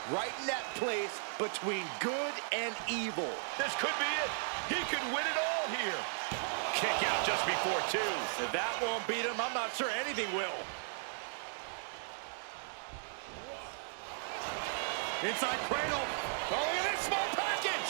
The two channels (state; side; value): silent; left; digital silence